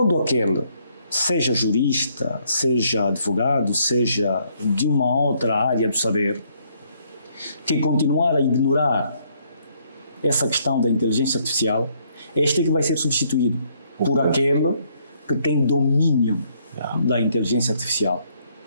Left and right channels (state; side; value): inverted; both; correlation -0.69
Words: aquele, seja jurista, seja advogado, seja de uma outra área do saber, que continuar a ignorar essa questão da inteligência artificial, este é que vai ser substituído por aquele que tem domínio da inteligência artificial.